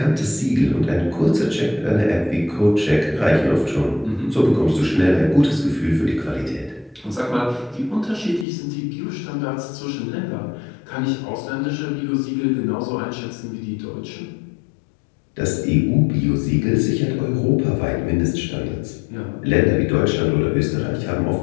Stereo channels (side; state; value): right; drops out; at 8.5 s